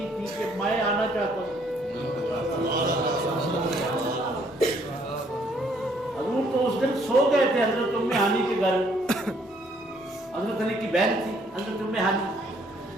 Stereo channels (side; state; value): both; normal; correlation 0.66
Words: تھی کہ میں آنا چاہتا ہوں. حضور تو اس دن سو گئے تھے حضرت ام ہانی کے گھر. حضرت علی کی بہن تھی حضرت ام ہانی.